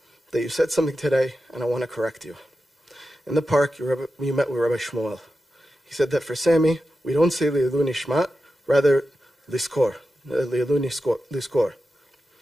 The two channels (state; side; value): normal; both; correlation 0.91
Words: that you said something today, and I want to correct you. In the park, you met with Rabbi Shmuel. He said that for Sammy, we don't say Li'elu Nishmat, rather Liskor,